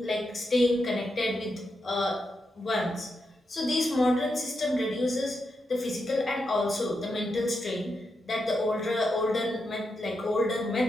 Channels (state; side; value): normal; both; correlation 0.85